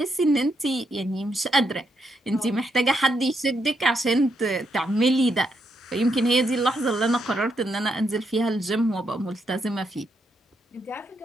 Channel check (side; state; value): both; normal; correlation 0.79